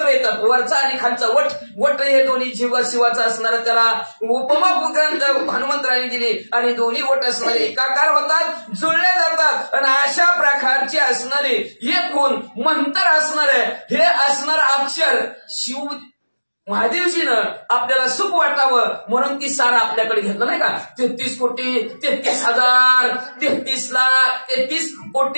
येतात. वरचा आणि खालचा वट, वट हे दोन्ही जीव शिवाचा असणारा त्याला उपमा ग्रंथ हनुमंतराने दिली. आणि दोन्ही वट असणारे एकाकार होतात, जुळले जातात. आणि अशा प्रकारचे असणारे एक होऊन मंत्र असणारे हे असणार अक्षर शिव महादेवजीनं आपल्याला सुख वाटावं म्हणून ती सार आपल्याकडे घेतलं नाही का. 33 कोटी 33 हजार 33 लाख 33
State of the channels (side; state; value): both; inverted; correlation -1.00